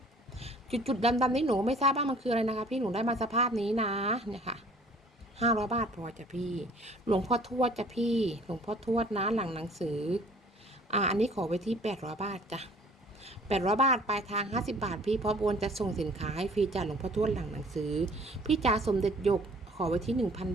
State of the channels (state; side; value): normal; both; correlation 0.53